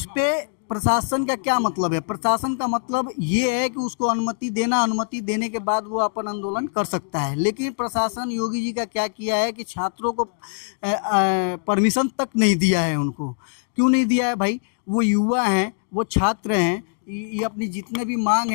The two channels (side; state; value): right; silent; digital silence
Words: पर प्रशासन का क्या मतलब है? प्रशासन का मतलब ये है कि उसको अनुमति देना, अनुमति देने के बाद वो अपन आंदोलन कर सकता है। लेकिन प्रशासन योगी जी का क्या किया है कि छात्रों को परमिशन तक नहीं दिया है। उनको क्यों नहीं दिया है भाई? वो युवा हैं, वो छात्र हैं, ये अपनी जितने भी मांग